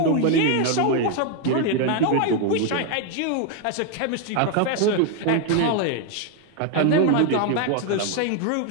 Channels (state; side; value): different; both; correlation 0.01